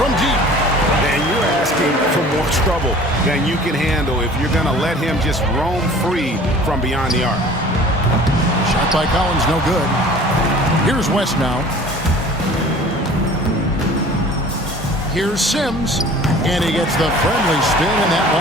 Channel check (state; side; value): normal; both; correlation 0.46